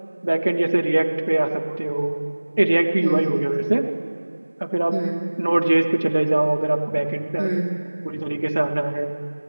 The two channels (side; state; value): both; inverted; correlation -1.00